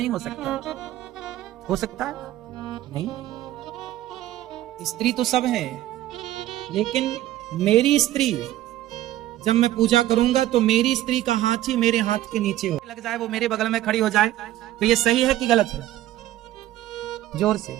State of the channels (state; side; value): quieter; left; 14.2 dB